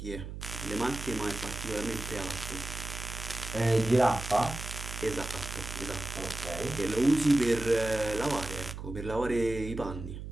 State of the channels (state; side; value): noise; right; hum, 8 dB below the sound